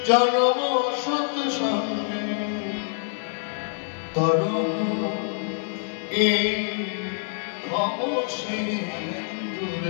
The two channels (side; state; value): right; silent; 61 dB below the other